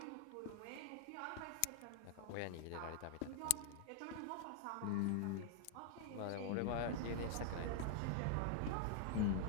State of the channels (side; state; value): both; different; correlation 0.00